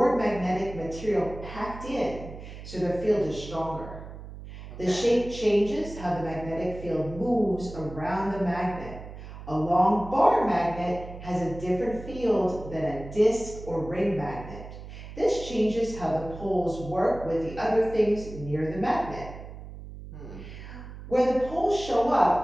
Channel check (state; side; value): noise; right; hum, 13 dB below the sound